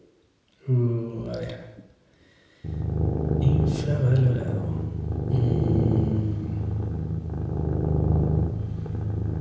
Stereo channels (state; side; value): identical; both; correlation 1.00